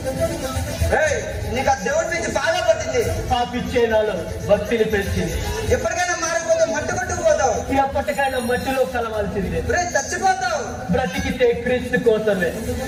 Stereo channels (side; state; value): both; identical; correlation 1.00